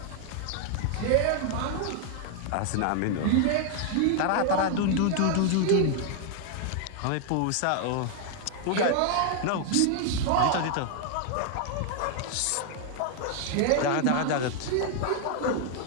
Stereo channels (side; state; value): both; different; correlation 0.00